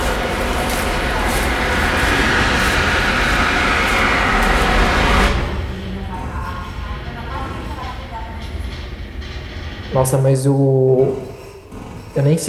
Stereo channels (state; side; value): identical; both; correlation 1.00